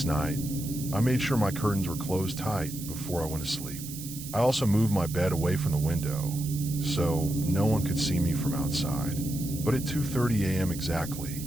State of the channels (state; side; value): noise; right; hiss, 11 dB below the sound